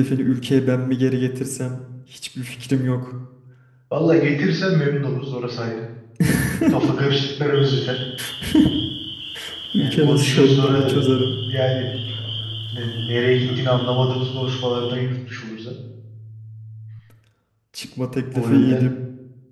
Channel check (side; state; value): both; identical; correlation 1.00